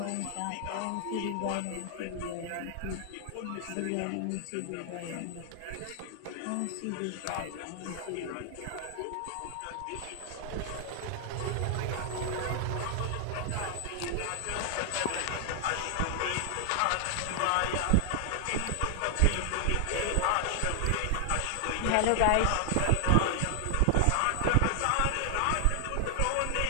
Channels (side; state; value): both; different; correlation 0.00